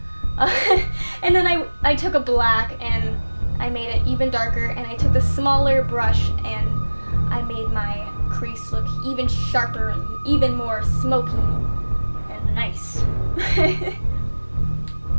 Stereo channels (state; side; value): inverted; both; correlation -1.00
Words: And then I took a black and I made it even darker, and I took the smaller brush and I made my crease look even sharper and even more smoky and nice.